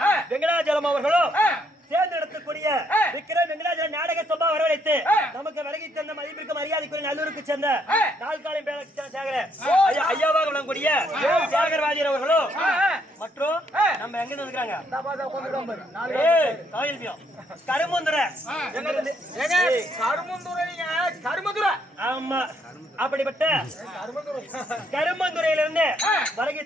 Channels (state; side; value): normal; both; correlation 0.72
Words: வெங்கடாஜலம் அவர்களும் தேர்ந்தெடுக்கக்கூடிய விக்ரம் வெங்கடாஜல நாடக சபா வரவழைத்து நமக்கு விலகி தந்த மதிப்பிற்கு மரியாதைக்குரிய நல்லூருக்கு சேர்ந்த நாள்காலம் ஐயாவாக விளங்கக்கூடிய தியாகராஜர் அவர்களும் மற்றும் நம்ம எங்க இருக்கிறாங்க கருமுந்துரை ஆமா அப்படிப்பட்ட கருமந்துறையிலிருந்து வருகை